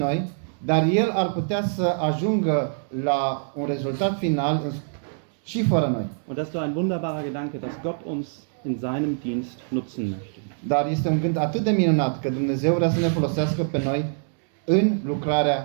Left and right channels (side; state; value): left; silent; digital silence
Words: dar El ar putea să ajungă la un rezultat final și fără noi. Und das ist doch ein wunderbarer Gedanke, dass Gott uns in seinem Dienst nutzen möchte. Dar este un gând atât de minunat că Dumnezeu vrea să ne folosească pe noi în